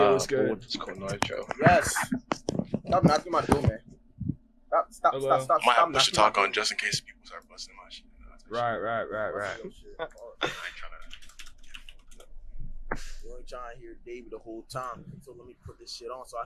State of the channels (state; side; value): identical; both; correlation 1.00